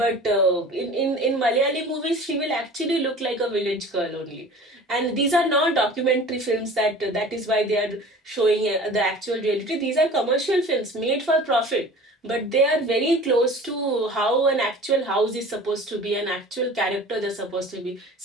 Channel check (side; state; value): both; normal; correlation 0.42